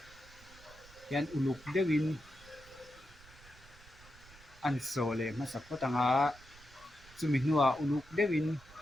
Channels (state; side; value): noise; right; rumble, 22 dB below the sound